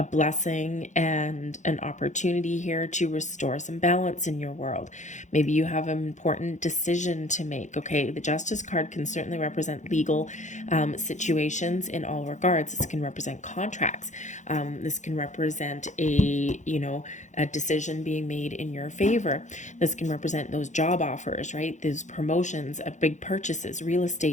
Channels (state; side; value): late; right; 0.35 ms